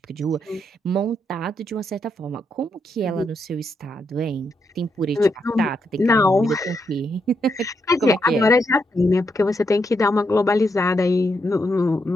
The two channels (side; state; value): both; normal; correlation 0.80